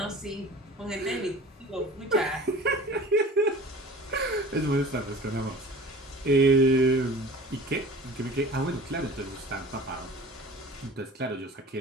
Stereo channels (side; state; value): both; normal; correlation 0.42